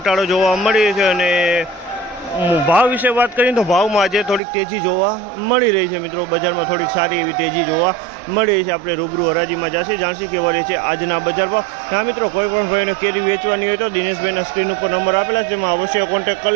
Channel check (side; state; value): left; drops out; at 4.4 s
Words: જોવા મળી છે અને ભાવ વિશે વાત કરીએ તો ભાવમાં આજે થોડીક તેજી જોવા મળી રહી છે મિત્રો। બજારમાં થોડીક સારી એવી તેજી જોવા મળી રહી છે। આપણે રૂબરૂ હરાજીમાં જાણશી કેવા રહે છે આજના બજાર ભાવ। હા મિત્રો, કોઈ પણ ભાઈને કેરી વેચવાની હોય તો દિનેશભાઈના સ્ક્રીન ઉપર નંબર આપેલા છે, જેમાં અવશ્ય કોન્ટેક્ટ કરી